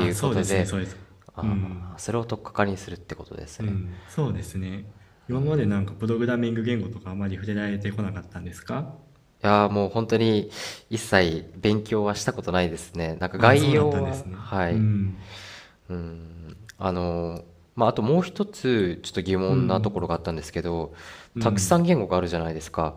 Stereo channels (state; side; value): identical; both; correlation 1.00